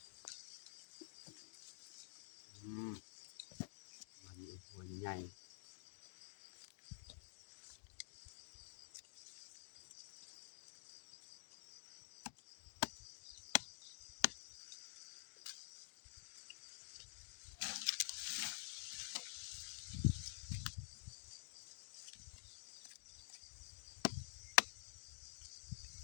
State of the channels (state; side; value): silent; right; digital silence